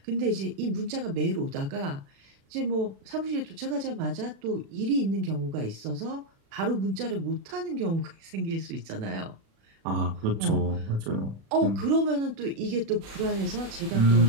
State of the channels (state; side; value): late; left; 36 ms